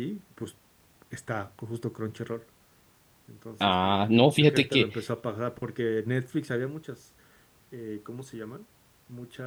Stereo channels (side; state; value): both; identical; correlation 1.00